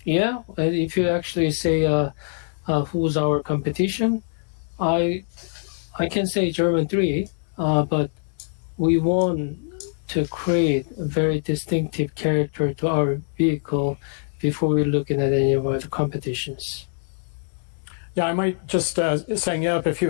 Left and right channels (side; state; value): right; silent; digital silence